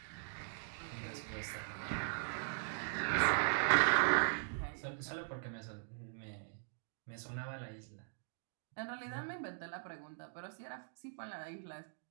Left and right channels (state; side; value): silent; left; digital silence